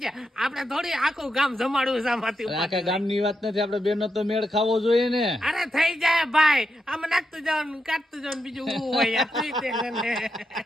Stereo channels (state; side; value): normal; both; correlation 0.84